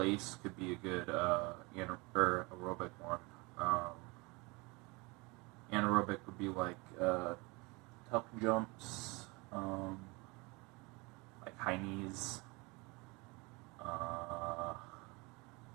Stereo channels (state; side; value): quieter; left; 26.4 dB